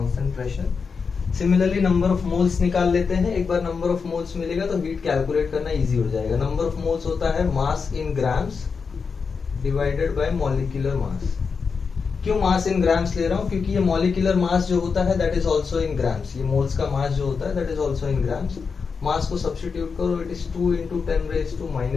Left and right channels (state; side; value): quieter; right; 5.4 dB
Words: pressure. Similarly number of moles निकाल लेते हैं. एक बार नंबर ऑफ मोल्स मिलेगा तो हीट कैलकुलेट करना इजी हो जाएगा. नंबर ऑफ मोल्स होता है mass in grams divided by molecular mass. क्यों मास इन ग्राम्स ले रहा हूँ? क्योंकि ये मॉलिक्यूलर मास जो होता है that is also in grams. ये मोल्स का मास जो होता है that is also in grams. Mass को सब्स्टिट्यूट करो, it is 2 into 10 raised to